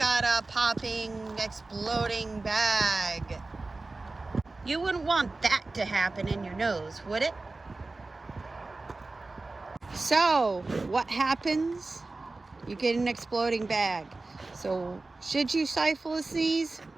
a popping, exploding bag. You wouldn't want that to happen in your nose, would it? So what happens? You get an exploding bag. So should you stifle a sneeze?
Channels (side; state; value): left; quieter; 3.4 dB